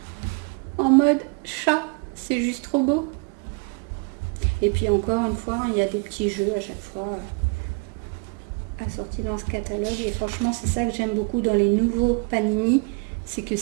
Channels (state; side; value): quieter; left; 31.2 dB